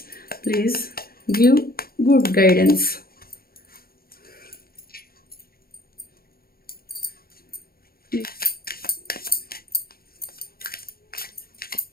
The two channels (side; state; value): right; late; 0.44 ms